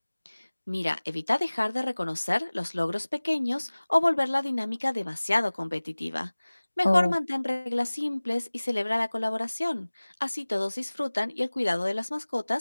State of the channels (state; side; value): inverted; both; correlation -1.00